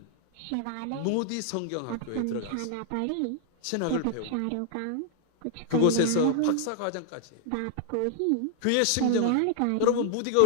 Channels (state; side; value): different; both; correlation 0.00